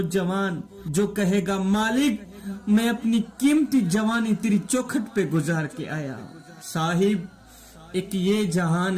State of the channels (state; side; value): identical; both; correlation 1.00